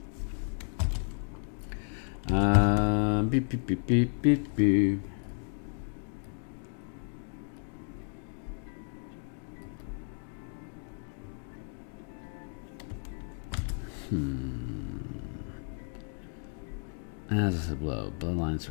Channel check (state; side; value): silent; right; 56 dB below the other